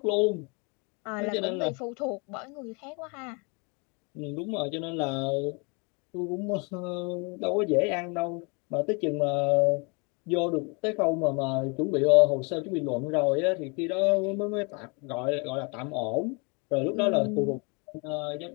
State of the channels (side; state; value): right; quieter; 32.0 dB